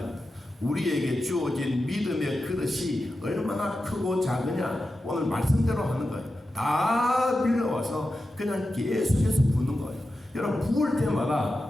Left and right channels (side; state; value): both; normal; correlation 0.91